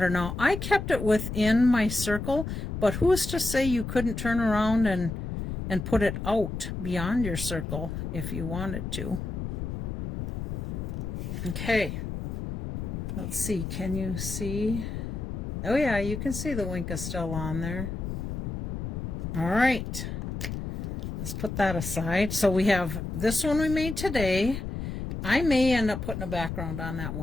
Now, I kept it within my circle, but who's to say you couldn't turn around and put it out beyond your circle if you wanted to. Okay, let's see, can you see? Oh yeah, you can see the Wink-O-Stella on there. All right, let's put that aside. So we have this one we made today. I may end up putting a background on that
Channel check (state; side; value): noise; left; rumble, 5 dB below the sound